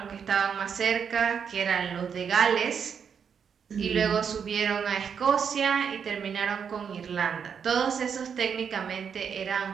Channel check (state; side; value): quieter; left; 7.0 dB